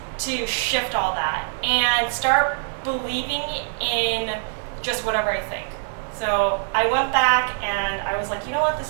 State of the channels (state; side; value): silent; left; 63 dB below the other